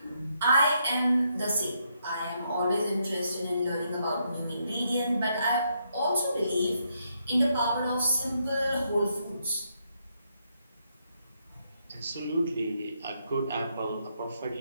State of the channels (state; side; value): inverted; both; correlation -0.77